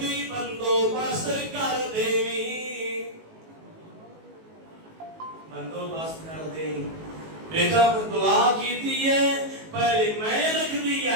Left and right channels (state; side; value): late; left; 19 ms